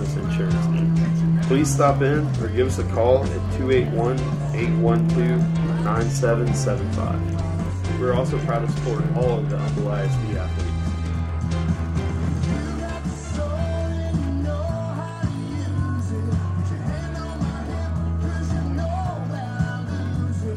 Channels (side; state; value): both; identical; correlation 1.00